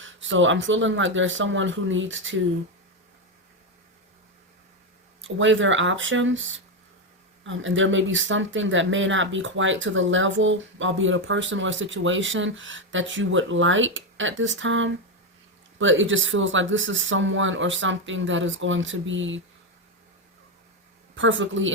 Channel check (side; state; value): both; normal; correlation 0.08